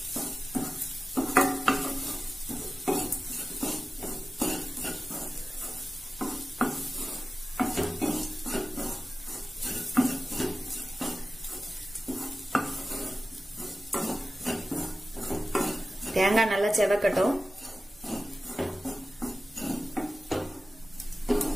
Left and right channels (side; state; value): right; noise; hum, 28 dB below the sound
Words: தேங்காய் நல்லா செவக்கட்டும்.